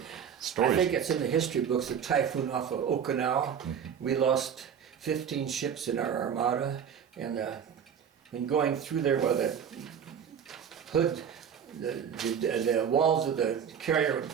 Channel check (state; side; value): quieter; left; 7.9 dB